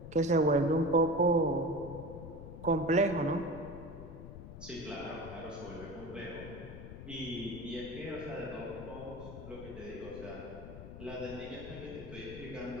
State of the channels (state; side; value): noise; left; rumble, 12 dB below the sound